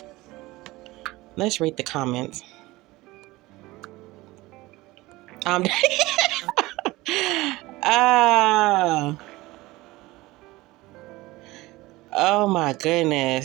Let's read the comments. Ah. Oh my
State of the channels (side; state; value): left; quieter; 19.8 dB